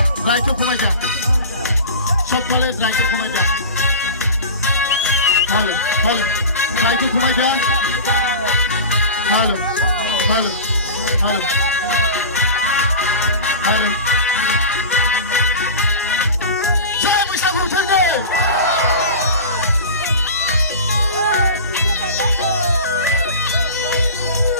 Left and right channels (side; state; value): both; inverted; correlation -0.32